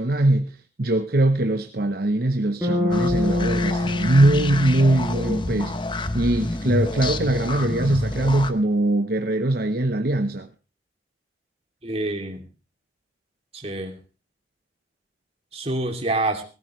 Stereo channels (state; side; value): normal; both; correlation 0.72